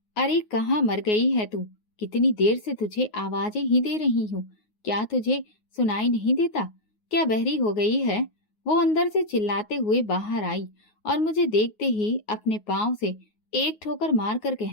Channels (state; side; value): late; right; 9.5 ms